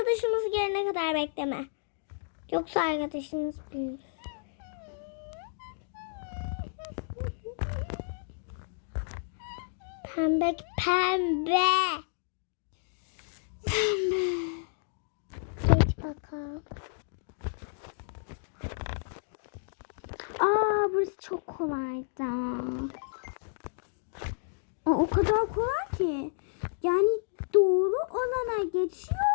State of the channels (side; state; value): right; silent; digital silence